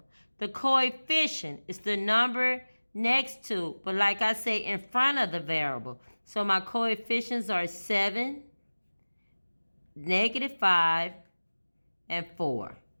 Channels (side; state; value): both; inverted; correlation -1.00